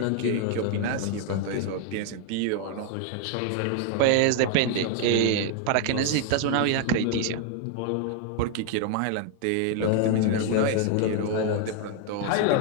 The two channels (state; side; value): different; both; correlation 0.00